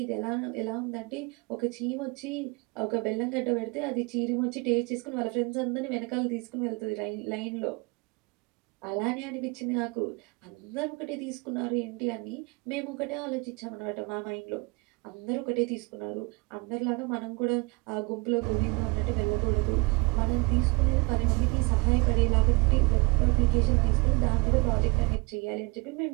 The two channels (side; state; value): left; quieter; 27.6 dB